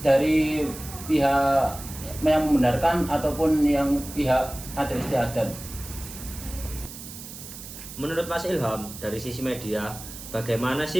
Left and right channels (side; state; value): right; noise; hiss, 13 dB below the sound